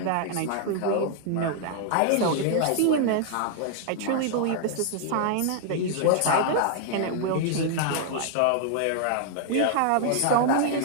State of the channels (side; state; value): both; different; correlation 0.00